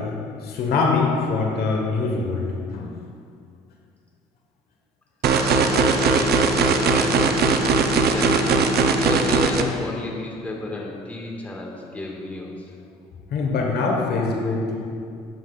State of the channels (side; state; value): both; normal; correlation 0.40